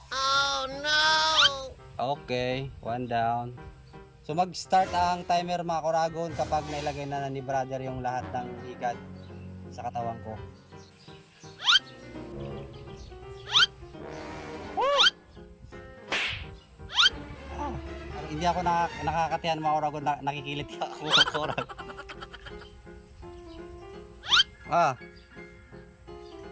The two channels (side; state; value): both; identical; correlation 1.00